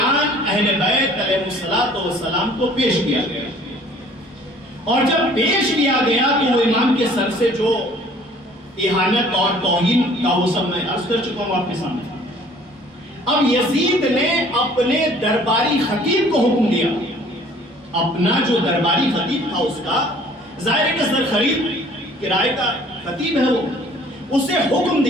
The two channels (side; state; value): both; normal; correlation 0.54